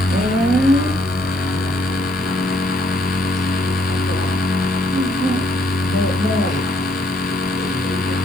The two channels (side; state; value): right; noise; hiss, 22 dB below the sound